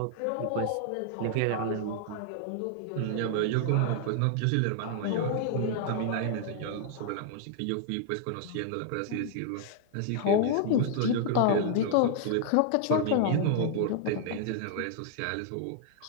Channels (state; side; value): different; both; correlation -0.01